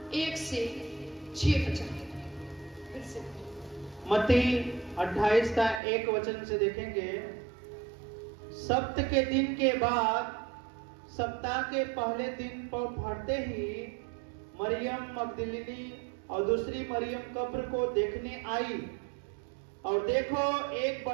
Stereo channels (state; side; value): drops out; left; at 5.8 s